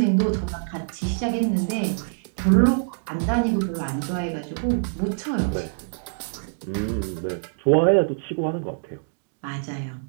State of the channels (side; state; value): left; silent; digital silence